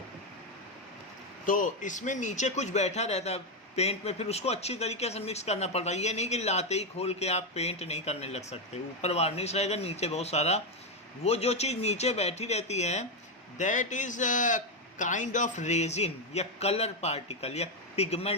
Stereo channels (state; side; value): normal; both; correlation 0.06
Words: तो इसमें नीचे कुछ बैठा रहता है पेंट में, फिर उसको अच्छी तरीके से मिक्स करना पड़ता है। ये नहीं कि लाते ही खोल के आप पेंट नहीं करने लग सकते। ऊपर वार्निश रहेगा, नीचे बहुत सारा वो जो चीज़ नीचे बैठी रहती है, that is kind of resin या कलर पार्टिकल या